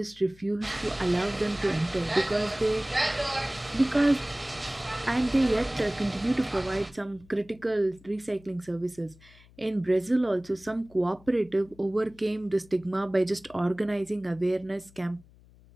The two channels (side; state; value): left; noise; hum, 25 dB below the sound